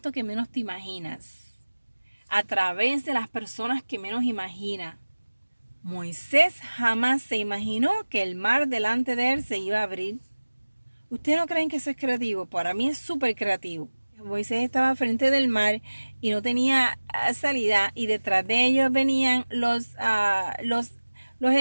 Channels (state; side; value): inverted; both; correlation -1.00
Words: que menos te imaginas, a través de las personas que menos imaginas. Moisés jamás se imaginó que el mar delante de él se iba a abrir. ¿Ustedes no creen que eso es creativo? Para mí es súper creativo. Moisés estaba frente del mar y no tenía salida y detrás de ellos venían los